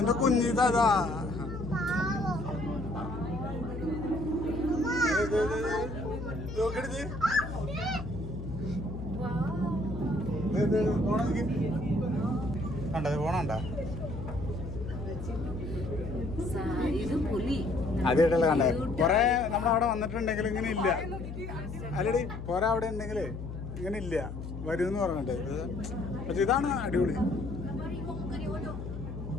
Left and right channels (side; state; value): left; noise; hum, 8 dB below the sound